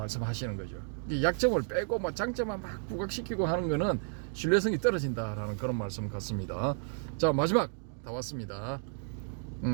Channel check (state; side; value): silent; left; 56 dB below the other